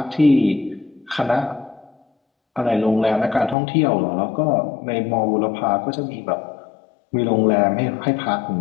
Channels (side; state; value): right; drops out; at 3.6 s